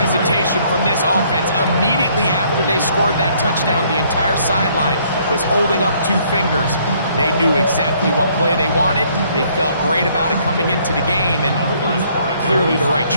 from this offense. Immediately after they scored that touchdown, the entire sideline was holding up 2 fingers. They knew exactly what play they wanted. They felt great about it coming into the game, and clearly the right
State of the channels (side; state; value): both; inverted; correlation -0.64